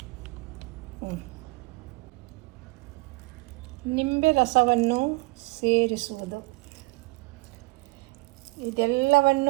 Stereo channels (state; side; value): quieter; left; 25.6 dB